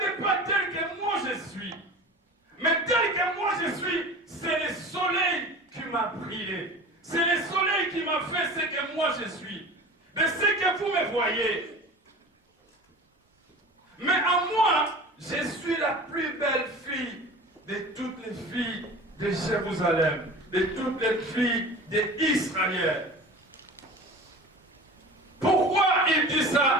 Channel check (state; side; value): normal; both; correlation 0.37